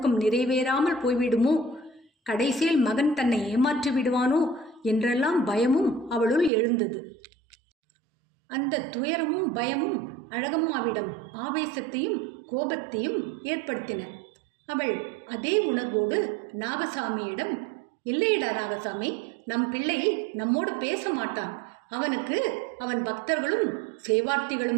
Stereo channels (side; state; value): left; drops out; at 6.5 s